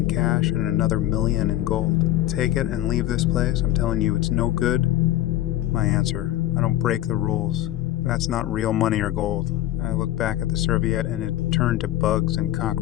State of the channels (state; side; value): quieter; right; 14.2 dB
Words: cash and another million in gold. Take it and leave this place. I'm telling you, it's no good. My answer, I don't break the rules. That's not real money or gold. I looked back at the serviette and it turned to bugs and